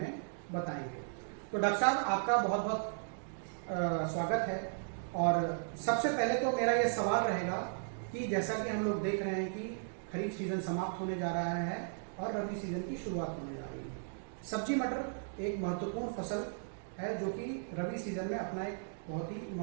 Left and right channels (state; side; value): silent; left; digital silence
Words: बताएंगे। तो डॉक्टर साहब, आपका बहुत बहुत स्वागत है। और सबसे पहले तो मेरा ये सवाल रहेगा कि जैसा कि हम लोग देख रहे हैं कि खरीफ सीजन समाप्त होने जा रहा है और रबी सीजन की शुरुआत होने जा रही है। सब्जी मटर एक महत्वपूर्ण फसल है जो कि रबी सीजन में अपना एक बहुत ही